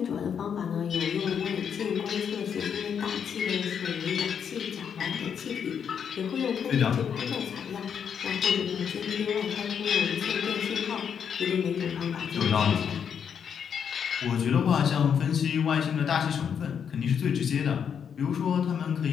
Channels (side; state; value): right; quieter; 7.6 dB